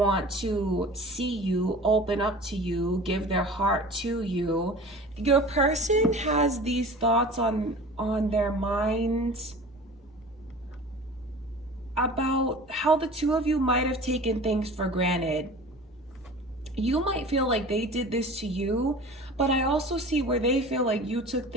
to see you, open up to you, give their heart to you. Your person has these thoughts on their minds about how the two of you might have taken things for granted. You might feel like they did this to you, but I also see where they feel like you took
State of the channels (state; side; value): normal; both; correlation 0.40